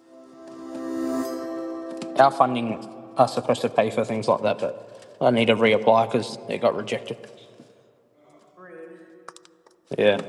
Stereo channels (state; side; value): identical; both; correlation 1.00